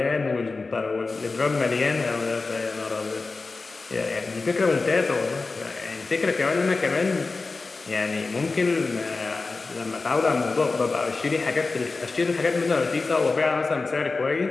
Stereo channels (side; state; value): right; quieter; 3.8 dB